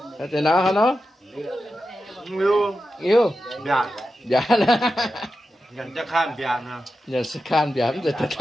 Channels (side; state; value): both; normal; correlation 0.90